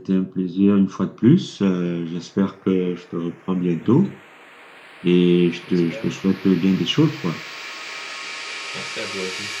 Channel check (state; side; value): identical; both; correlation 1.00